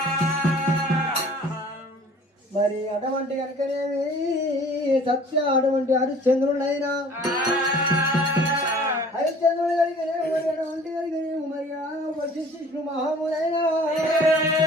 మరి అటువంటి కనుకనేమి సత్య అటువంటి హరిశ్చంద్రుడైనా హరిశ్చంద్రుడు కలిగినేమి మరి అటువంటి కలిగినేమి మరి వశిష్ఠు మహామునైనా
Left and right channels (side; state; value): both; normal; correlation 0.49